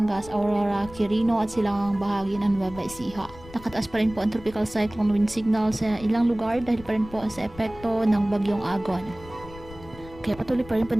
Aurora, Quirino at silang bahagi ng Nueva Ecija. Nakataas pa rin po ang tropical cyclone wind signal sa ilang lugar dahil pa rin po sa epekto ng bagyong Agon. Kaya patuloy pa rin po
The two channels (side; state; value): left; noise; rumble, 18 dB below the sound